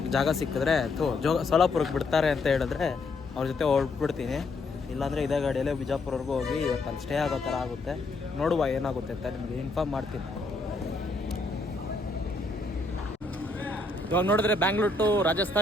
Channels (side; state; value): right; quieter; 3.3 dB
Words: ಜಾಗ ಸಿಕ್ಕಿದ್ರೆ ಸೋಲಾಪುರಕ್ಕೆ ಬಿಡ್ತಾರೆ ಅಂತ ಹೇಳಿದ್ರೆ ಅವ್ರ ಜೊತೆ ಹೊರಟ್ಬಿಡ್ತೀನಿ. ಇಲ್ಲಾಂದರೆ ಇದೇ ಗಾಡಿಯಲ್ಲೇ ಬಿಜಾಪುರವರೆಗೂ ಹೋಗಿ ಇವತ್ತು ಅಲ್ಲಿ ಸ್ಟೇ ಆಗೋ ಥರ ಆಗುತ್ತೆ. ನೋಡುವ ಏನಾಗುತ್ತೆ ಅಂತ ನಿಮಗೆ ಇನ್ಫಾರ್ಮ್ ಮಾಡ್ತೀನಿ. ಇವಾಗ ನೋಡಿದ್ರೆ ಬ್ಯಾಂಗ್ಳೂರ್ ಟು